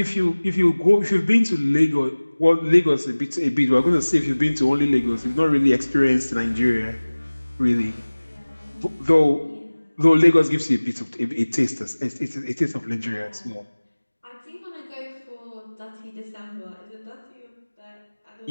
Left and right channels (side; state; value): both; inverted; correlation -1.00